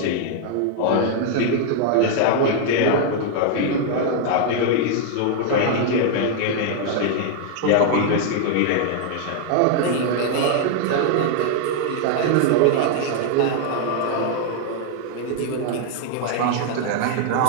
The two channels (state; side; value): different; both; correlation 0.00